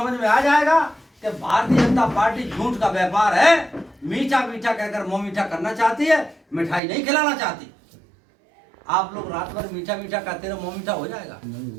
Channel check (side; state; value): left; drops out; at 6.8 s